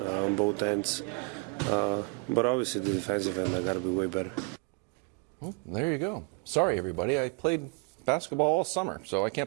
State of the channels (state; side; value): quieter; left; 31.6 dB